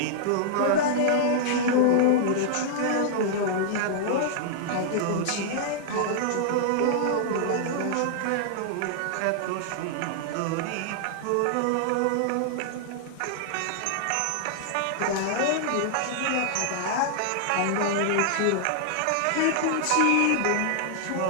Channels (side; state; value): both; different; correlation -0.01